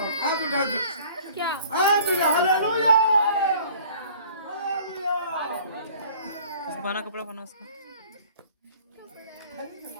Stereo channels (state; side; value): inverted; both; correlation -0.50